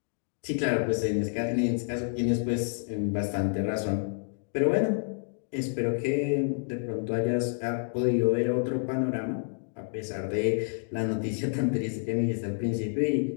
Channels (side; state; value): right; silent; digital silence